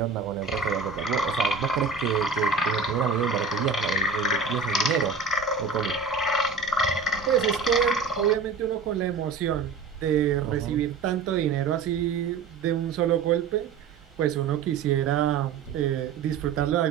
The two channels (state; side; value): quieter; left; 5.2 dB